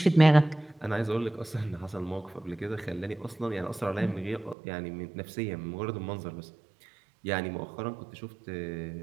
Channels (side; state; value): left; drops out; at 4.5 s